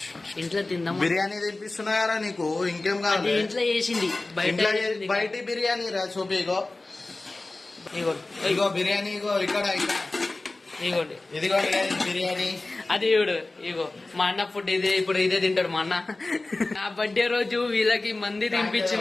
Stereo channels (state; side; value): quieter; right; 3.1 dB